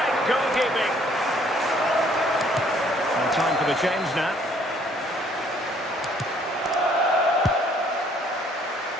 goalkeeping. And time for the change now.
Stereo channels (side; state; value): both; normal; correlation 0.62